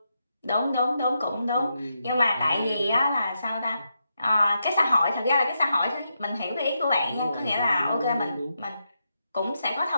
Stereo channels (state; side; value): inverted; both; correlation -0.84